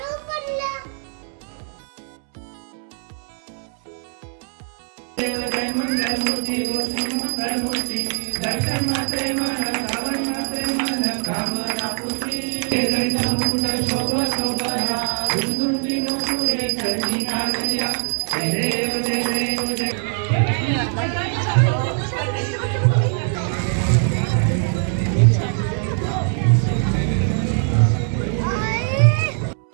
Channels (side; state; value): left; silent; 64 dB below the other